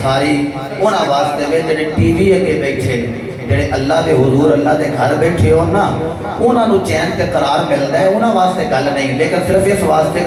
ساری انہاں واسطے میں جڑے ٹی وی اگے بیٹھے جڑے اللہ دے حضور اللہ دے گھر بیٹھے ہو نا انہاں نو چین تے قرار ملدا ہے انہاں واسطے گل نہیں لیکن صرف اس واسطے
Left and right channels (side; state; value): both; identical; correlation 1.00